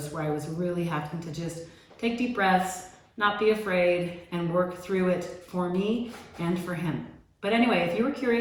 where I was really having to just take deep breaths, not be afraid, and work through it for me and for him. But anyway, if you were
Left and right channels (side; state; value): both; identical; correlation 1.00